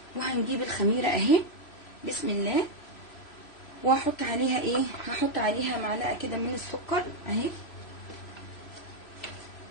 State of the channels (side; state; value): right; late; 3.0 ms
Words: وهنجيب الخميرة اهي بسم الله، وهحط عليها ايه، هحط عليها معلقة كده من السكر اهي،